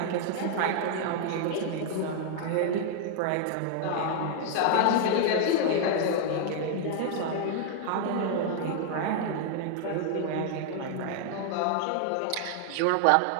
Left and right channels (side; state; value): both; different; correlation 0.00